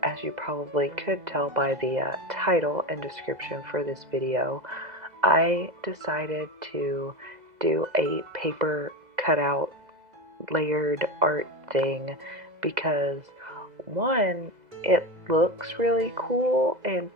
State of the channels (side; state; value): left; late; 2.0 ms